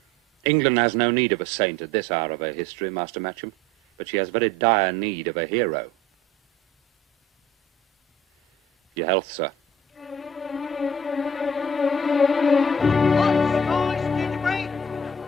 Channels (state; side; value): normal; both; correlation 0.50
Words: England has no need of a saint at this hour of her history, Master Matcham, but she has very dire need of a hero. Your health, sir.